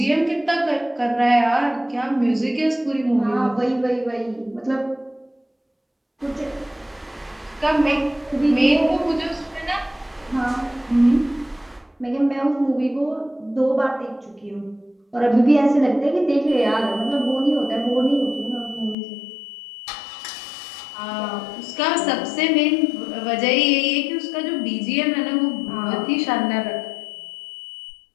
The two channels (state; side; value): drops out; right; at 18.9 s